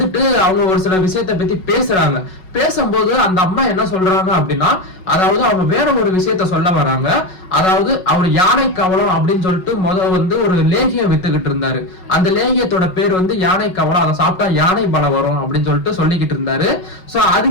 அவங்க ஒரு சில விஷயத்தை பத்தி பேசுறாங்க. பேசும்போது அந்த அம்மா என்ன சொல்றாங்க அப்படின்னா, அதாவது அவங்க வேற ஒரு விஷயத்த சொல்ல வராங்க. அதாவது அவர் யானை கவலம் அப்படின்னு சொல்லிட்டு வந்து ஒரு லேகியம் வித்துக்கிட்டு இருந்தாரு. அந்த லேகியத்தோட பேர் வந்து யானை கவலம், அதை சாப்பிட்டா யானை பலம் வரும் அப்படின்னு சொல்லிட்டு சொல்லிக்கிட்டு இருந்தாரு. சோ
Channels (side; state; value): right; late; 5.4 ms